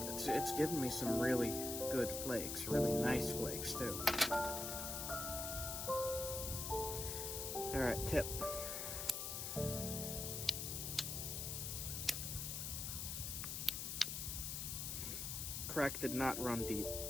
It's giving me some really good flakes, really nice flakes too. Alright, tip. Crack did not run deep.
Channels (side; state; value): left; noise; hiss, 3 dB below the sound